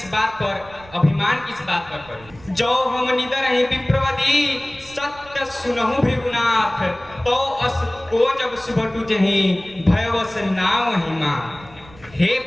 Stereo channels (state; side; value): noise; right; rumble, 22 dB below the sound